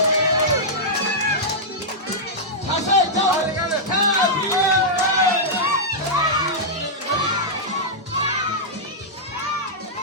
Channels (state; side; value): normal; both; correlation -0.10